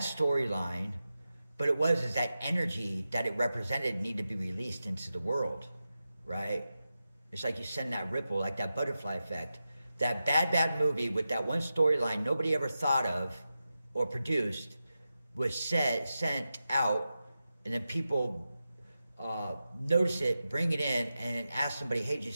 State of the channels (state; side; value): inverted; both; correlation -0.92